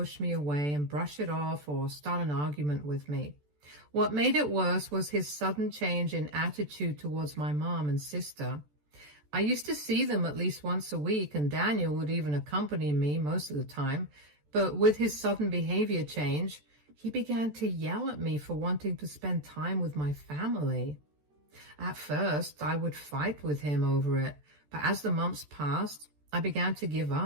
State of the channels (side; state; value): left; late; 14 ms